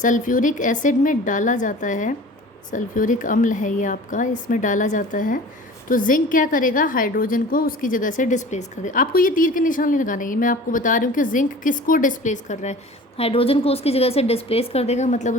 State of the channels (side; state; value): both; normal; correlation 0.42